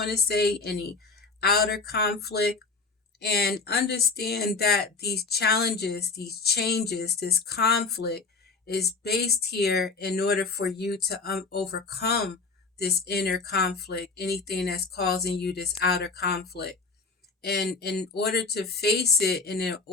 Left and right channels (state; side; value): quieter; right; 4.3 dB